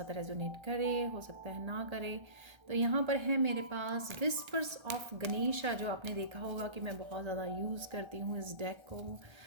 रेजोनेट करे, हो सकता है ना करे। तो यहाँ पर है मेरे पास विस्पर्स ऑफ गणेशा, जो आपने देखा होगा कि मैं बहुत ज़्यादा यूज़ करती हूँ इस डेक को।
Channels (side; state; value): left; late; 1.3 ms